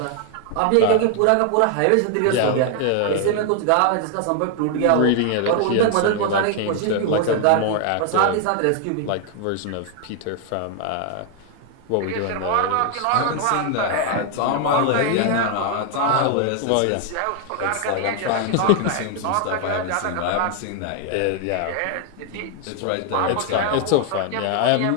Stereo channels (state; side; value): different; both; correlation 0.00